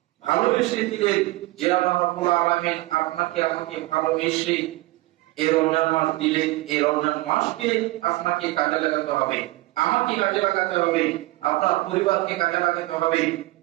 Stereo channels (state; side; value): quieter; left; 19.7 dB